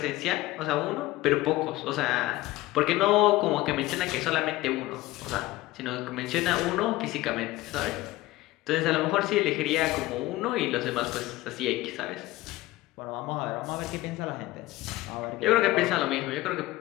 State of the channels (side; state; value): right; quieter; 17.8 dB